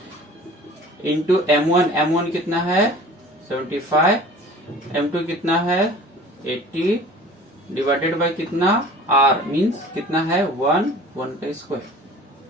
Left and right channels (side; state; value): both; normal; correlation 0.44